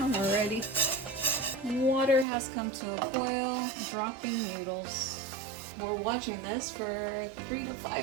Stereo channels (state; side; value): drops out; left; at 2.2 s